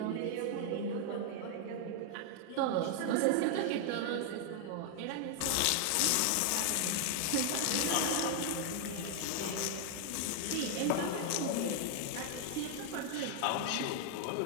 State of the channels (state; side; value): different; both; correlation 0.00